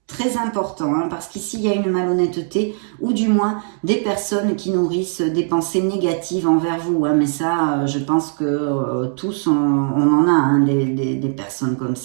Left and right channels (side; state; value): left; silent; 56 dB below the other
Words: Très important, parce qu'ici, il y a une malhonnêteté, ou du moins des personnes qui nourrissent des pensées négatives envers vous. Mais ça, je pense que tous, on en a des personnes comme